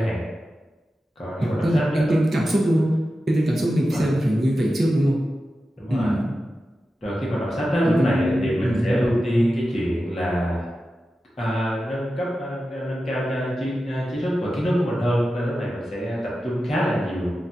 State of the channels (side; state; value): both; normal; correlation 0.92